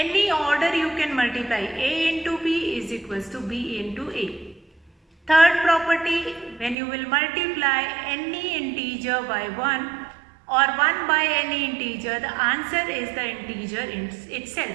order, you can multiply a into b is equals to b into a. Third property, when you will multiply any integer by 1 or 1 by any integer, the answer is the integer itself,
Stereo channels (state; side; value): drops out; left; at 6.8 s